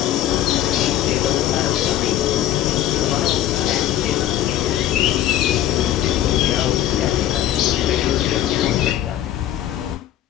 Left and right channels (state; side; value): quieter; right; 12.4 dB